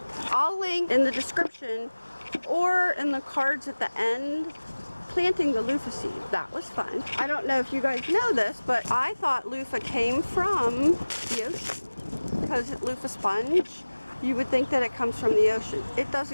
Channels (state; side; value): inverted; both; correlation -1.00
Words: I'll link in the description or in the cards at the end planting the loofah seed. That was fun. I don't know if you guys know this, but I thought loofah came from the ocean because it's Luffa Sponge. You would think that it comes from the ocean. It